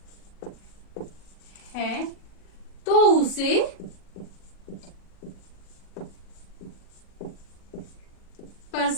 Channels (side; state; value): right; late; 40 ms